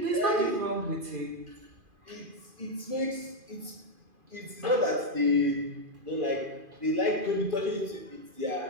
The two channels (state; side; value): late; left; 2.5 ms